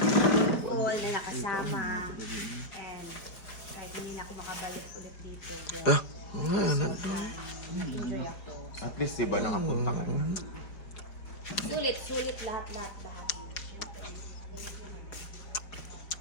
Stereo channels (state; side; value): late; right; 4.6 ms